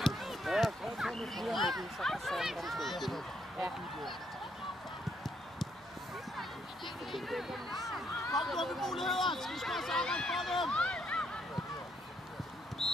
Kom du med muligheder! Skal vi slå sammen for dem?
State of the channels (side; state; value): both; normal; correlation 0.73